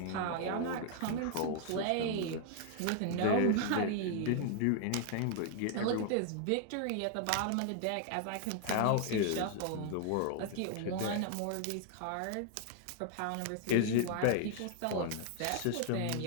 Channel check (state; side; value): different; both; correlation 0.00